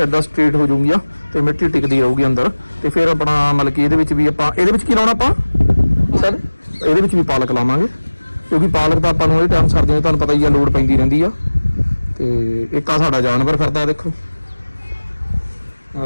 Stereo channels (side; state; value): both; inverted; correlation -1.00